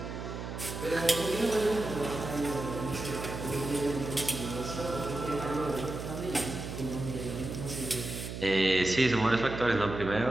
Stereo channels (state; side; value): noise; right; hum, 7 dB below the sound